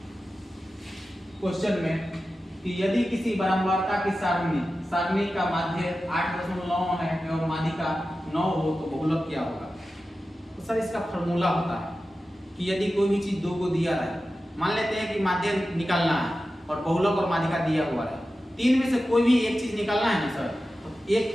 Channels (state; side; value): normal; both; correlation 0.93